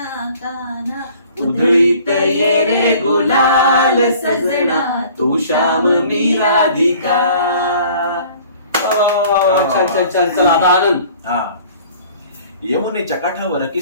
काना. उधळीत ये रे गुलाल सजना तू श्याम मी राधिका. छान छान छान. चला आता आनंद. यमुनेच्या काठावर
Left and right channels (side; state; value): both; inverted; correlation -0.51